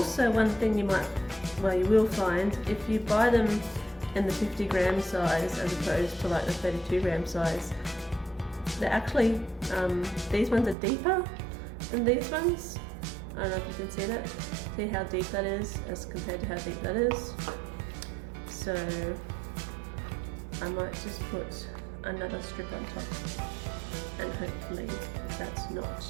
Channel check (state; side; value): drops out; left; at 10.8 s